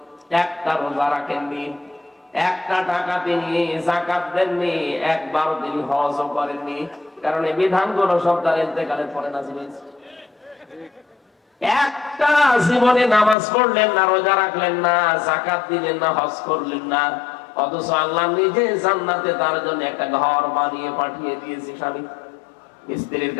একটা রোজা রাখেননি, একটা টাকা তিনি যাকাত দেননি, একবার তিনি হজও করেননি। কারণ এই বিধানগুলো সব তার ইন্তেকালের পরে নাযিল হয়েছে। একটা জীবনে নামাজ পড়লেন না, রোজা রাখলেন না, যাকাত দিলেন না, হজ করলেন না, অথচ আল্লাহ নিজে জান্নাতে তার জন্য একটা ঘর বানিয়ে পাঠিয়ে দিয়েছে স্বামী স্ত্রীর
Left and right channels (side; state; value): right; drops out; at 13.4 s